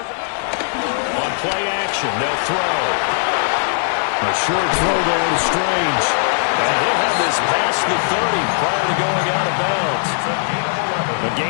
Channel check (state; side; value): silent; right; digital silence